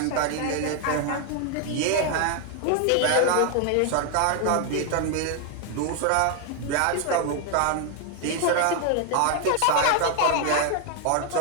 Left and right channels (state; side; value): different; both; correlation 0.00